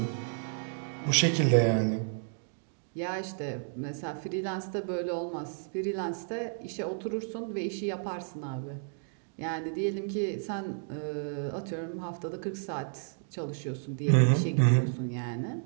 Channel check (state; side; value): silent; left; digital silence